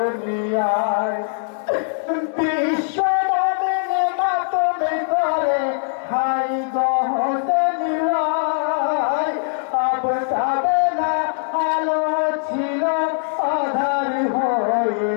বিশ্ব মানবে মাতমে করে হাই গহসেনিয়ায় আবসাবে না আলো ছিল আধার হয়ে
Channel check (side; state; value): right; silent; digital silence